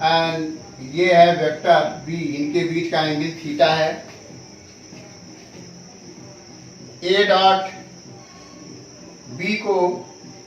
एंड ये है वेक्टर बी, इनके बीच का एंगल थीटा है। ए डॉट बी को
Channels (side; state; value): both; identical; correlation 1.00